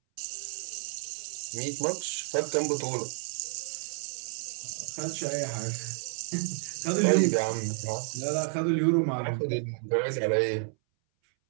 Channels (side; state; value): left; silent; 58 dB below the other